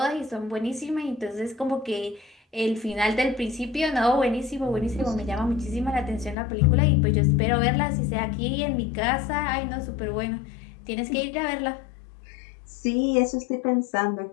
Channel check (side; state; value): right; drops out; at 6.4 s